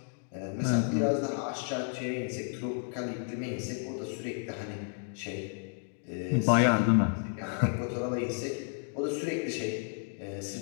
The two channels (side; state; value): right; silent; 56 dB below the other